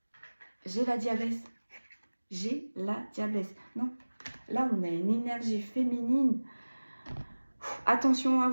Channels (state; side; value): inverted; both; correlation -1.00